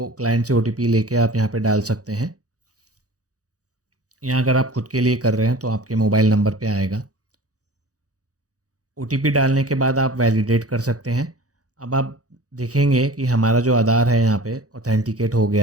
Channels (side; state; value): left; late; 0.67 ms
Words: क्लाइंट से OTP लेके आप यहाँ पे डाल सकते हैं। यहाँ अगर आप खुद के लिए कर रहे हैं तो आपके मोबाइल नंबर पे आएगा। OTP डालने के बाद आप वैलिडेट कर सकते हैं। अब आप देखेंगे कि हमारा जो आधार है यहाँ पे ऑथेंटिकेट हो